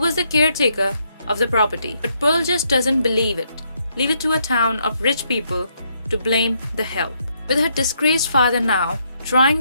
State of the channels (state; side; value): inverted; both; correlation -0.75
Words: the caretaker of the property. But Pearl just doesn't believe it. Leave it to a town of rich people to blame the help. With her disgraced father now trying